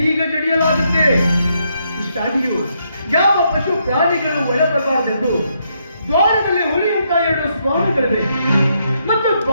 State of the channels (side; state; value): both; inverted; correlation -0.77